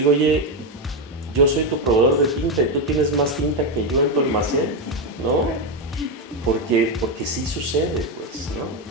oye, yo soy tu proveedor de tinta y tú tienes más tinta que yo en tu almacén, ¿no? Porque sí sucede, pues, ¿no?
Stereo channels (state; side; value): normal; both; correlation 0.08